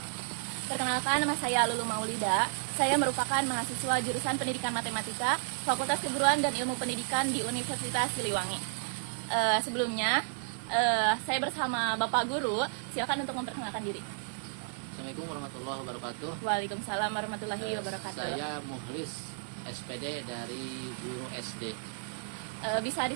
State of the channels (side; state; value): left; silent; 56 dB below the other